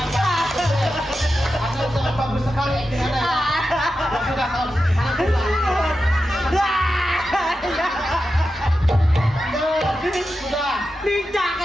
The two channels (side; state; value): both; normal; correlation 0.90